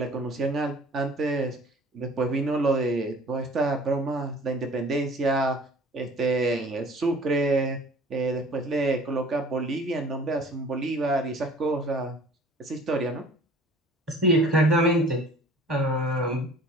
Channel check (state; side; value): normal; both; correlation 0.48